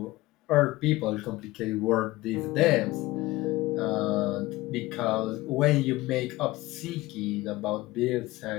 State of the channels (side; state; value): right; quieter; 19.1 dB